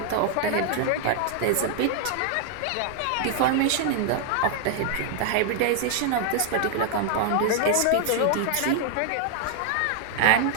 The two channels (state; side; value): different; both; correlation 0.00